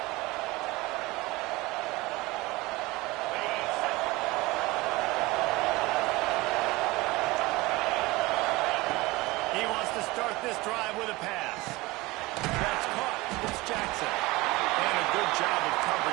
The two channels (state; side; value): quieter; left; 21.5 dB